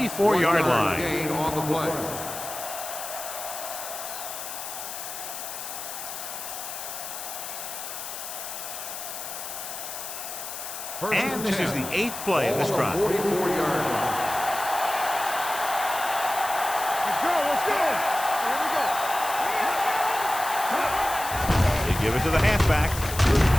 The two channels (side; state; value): left; noise; hiss, 8 dB below the sound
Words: line. Gain on the play. And this is the 8th play of this drive. 44-yard line. Let's go. Here we go. They give it to the halfback.